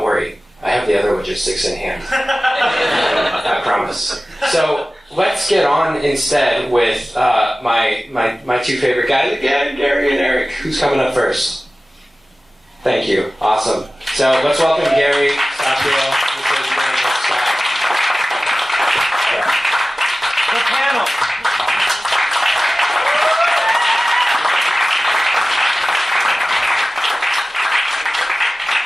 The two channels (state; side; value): normal; both; correlation 0.96